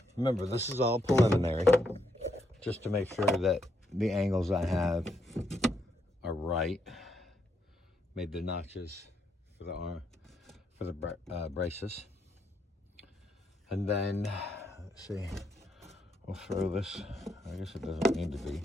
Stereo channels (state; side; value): normal; both; correlation 0.77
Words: Remember, this is all preliminary, just to make sure that the angles I have are right. Made the notches for the arm, for the braces. And then, let's see, we'll throw this, I guess it doesn't need to be.